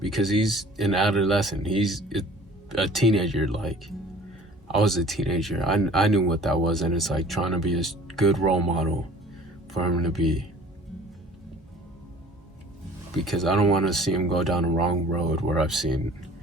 because he's an adolescent. He's a teenager. Like, I was a teenager. I knew what that was, and it's like trying to be a good role model for him to be. Because I don't want to see him go down the wrong road where I've seen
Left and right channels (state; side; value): normal; both; correlation 0.48